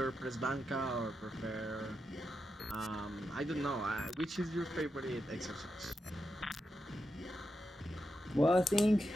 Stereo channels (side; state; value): both; normal; correlation 0.87